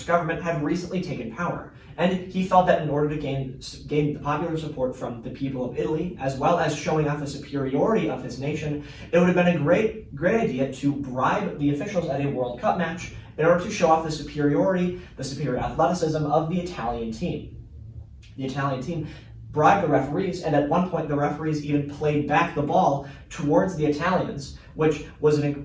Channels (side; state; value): both; identical; correlation 1.00